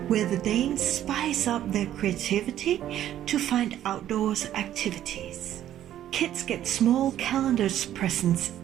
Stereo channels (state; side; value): quieter; left; 11.8 dB